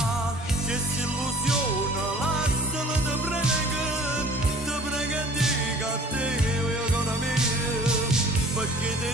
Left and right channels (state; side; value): normal; both; correlation 0.50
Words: che si illusiona lasciala te prega e dica a te io ancora mia perché ti